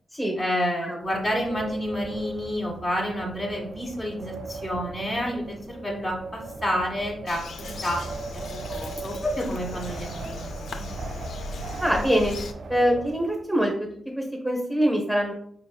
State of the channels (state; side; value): normal; both; correlation 0.87